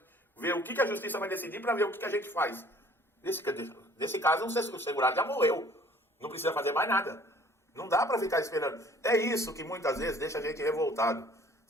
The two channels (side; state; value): both; normal; correlation 0.54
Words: ver o que a justiça vai decidir para ver o que a gente faz. Nesse caso, o segurado já morreu. Não precisa fazer mais nada. Não dá para ficar esperando. É isso que muitas vezes deixa a gente revoltado,